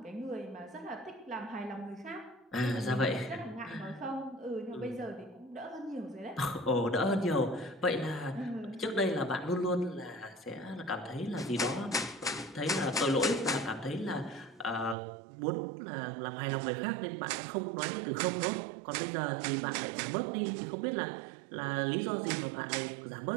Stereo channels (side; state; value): left; drops out; at 15.0 s